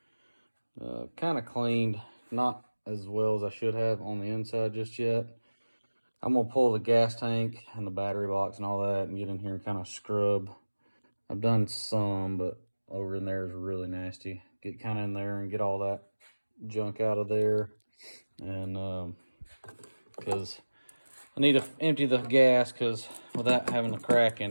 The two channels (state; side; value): inverted; both; correlation -1.00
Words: Kind of cleaned, not as well as I should have on the inside just yet. I'm gonna pull the gas tank and the battery box and all that and get in here and kind of scrub. I've done some, but over in there is really nasty. Get kind of in there and get all that junk out of there. And because I need to empty the gas, because without having a crack in